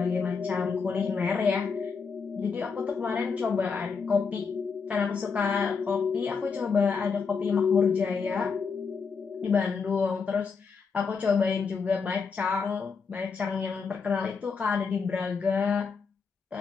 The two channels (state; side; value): quieter; right; 5.4 dB